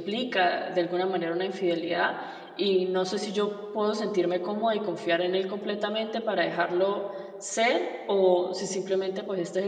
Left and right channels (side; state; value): both; identical; correlation 1.00